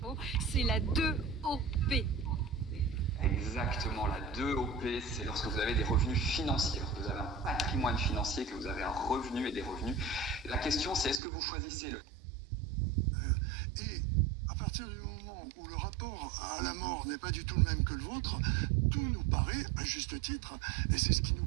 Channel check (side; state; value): left; drops out; at 11.2 s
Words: Attention, c'est la 2OP. Exactement, la 2OP, c'est lorsque vous avez des revenus financiers, lorsque vous avez un patrimoine financier, que vous avez un revenu et des revenus. La question, c'est est-ce que vous choisissez le... Et à partir du moment où le rapport à la mort n'est pas du tout le même que le vôtre, tout nous paraît à juste titre, et c'est ce qui nous